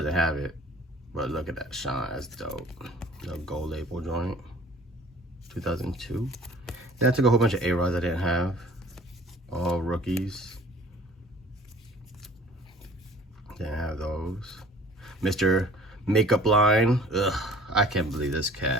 have it, but look at that shine, that's dope. The gold label joint, 2002. Then I took a whole bunch of A-Rods I didn't have, all rookies. Didn't have those. Mr. Makeup Line. Ugh, I can't believe this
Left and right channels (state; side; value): normal; both; correlation 0.50